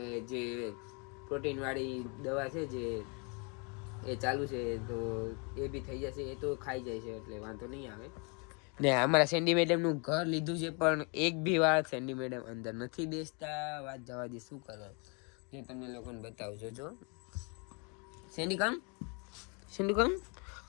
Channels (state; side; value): quieter; right; 34.0 dB